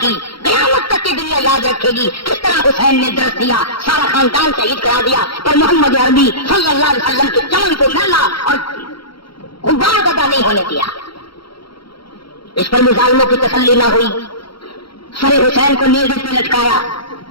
کی, قیامت تک کی دنیا یاد رکھے گی کس طرح حسین نے درس دیا, سارا خاندان شہید کرا دیا, پر محمد عربی صلی اللہ علیہ وسلم کے چمن کو میلا اور غبار پیدا نہیں ہونے دیا. اس پر بھی ظالموں کی تسلی نہ ہوئی, سر حسین کو نیزے پہ لٹکایا,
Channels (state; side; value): late; right; 0.74 ms